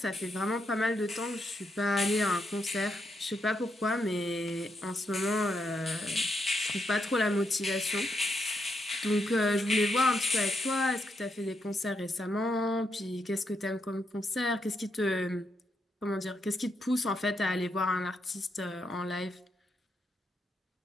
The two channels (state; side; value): normal; both; correlation 0.80